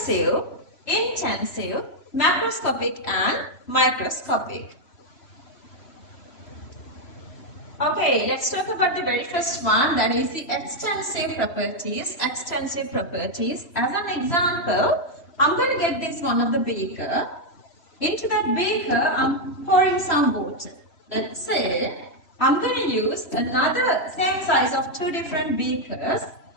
intensive, macroscopic and microscopic. Okay, let's talk about the very first one, that is the extensive properties. Extensive properties. As an example, I'm going to get this one of the beaker. Into that beaker, I'm pouring some water. Let's say I'm going to use another same size of 2 different beakers.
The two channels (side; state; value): right; late; 3.0 ms